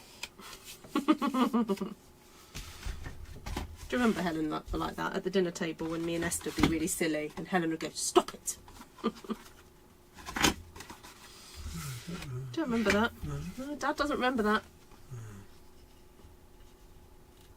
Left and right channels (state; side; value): identical; both; correlation 1.00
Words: Do you remember Helen like that at the dinner table when me and Esther would be really silly and Helen would go, stop it. Don't remember that. No, Dad doesn't remember that.